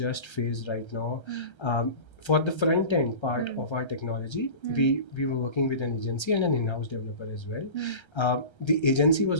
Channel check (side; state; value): right; late; 1.3 ms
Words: faced right now. For the front end part of our technology, we were working with an agency and an in-house developer as well. The agency